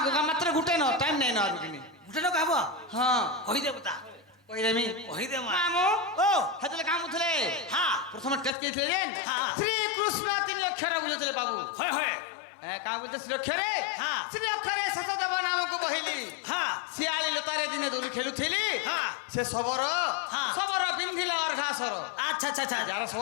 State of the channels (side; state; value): right; drops out; at 8.5 s